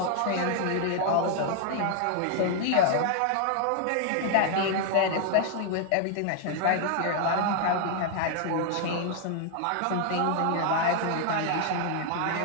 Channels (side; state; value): both; different; correlation 0.00